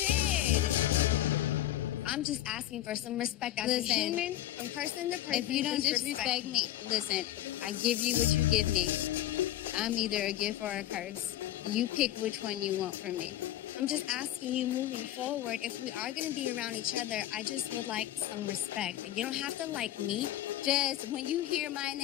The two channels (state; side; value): quieter; right; 13.6 dB